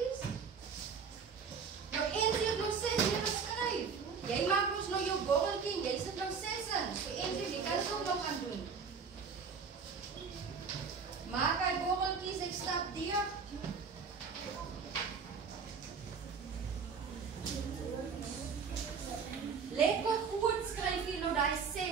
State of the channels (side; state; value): left; quieter; 5.8 dB